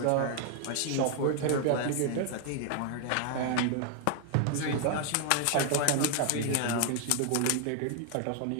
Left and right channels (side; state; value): both; different; correlation 0.00